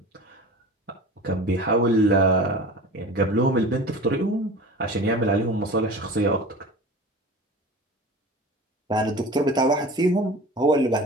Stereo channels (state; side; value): normal; both; correlation 0.36